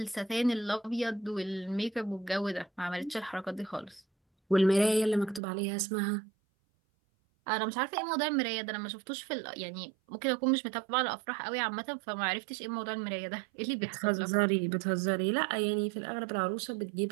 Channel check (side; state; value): left; drops out; at 5.4 s